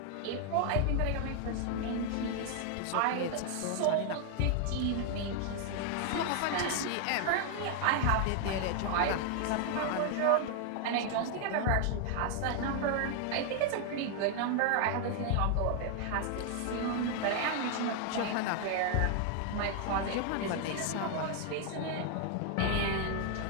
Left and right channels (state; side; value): different; both; correlation 0.00